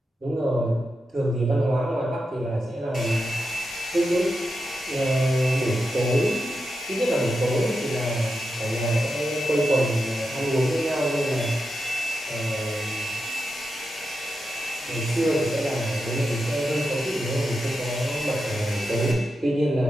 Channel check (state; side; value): normal; both; correlation 0.88